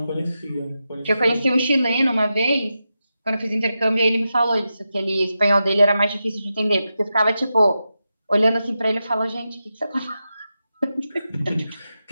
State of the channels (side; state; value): both; inverted; correlation -0.90